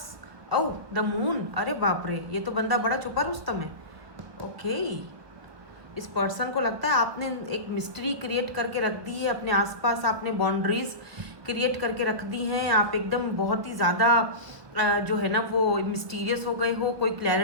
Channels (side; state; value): left; late; 1.3 ms